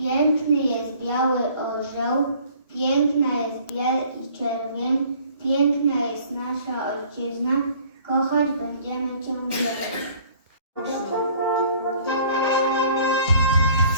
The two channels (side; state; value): both; inverted; correlation -0.54